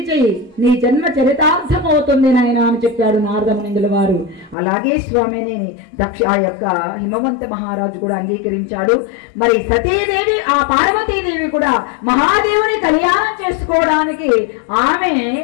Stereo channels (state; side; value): drops out; right; at 4.5 s